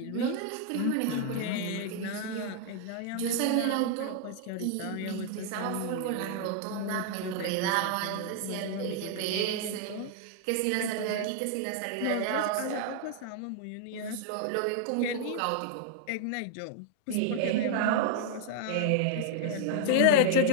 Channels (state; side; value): different; both; correlation -0.01